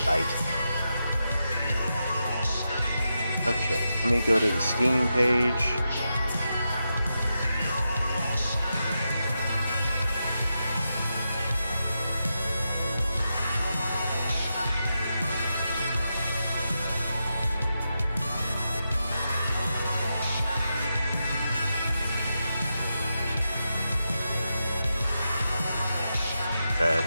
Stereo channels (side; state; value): both; inverted; correlation -0.87